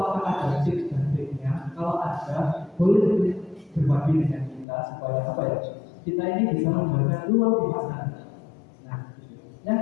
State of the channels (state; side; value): drops out; right; at 4.7 s